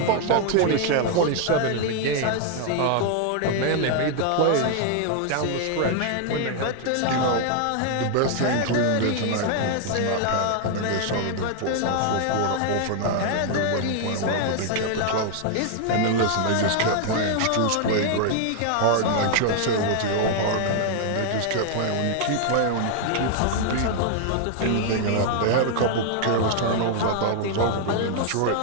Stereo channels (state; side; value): different; both; correlation 0.00